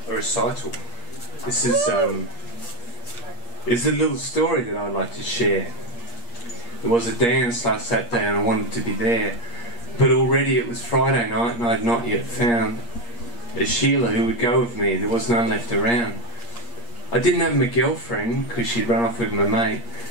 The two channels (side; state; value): right; late; 8.5 ms